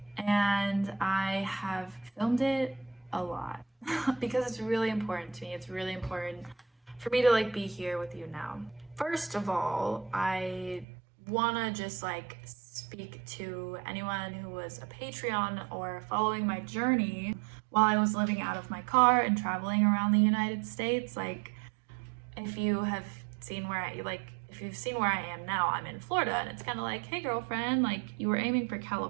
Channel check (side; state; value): left; drops out; at 10.9 s